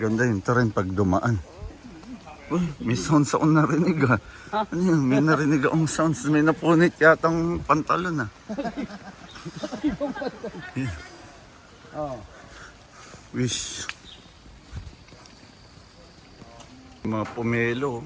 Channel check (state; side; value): identical; both; correlation 1.00